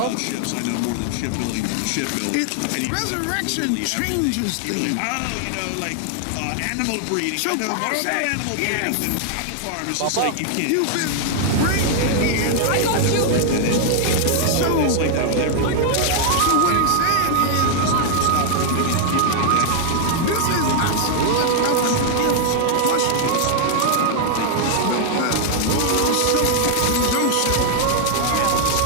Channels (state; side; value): different; both; correlation 0.00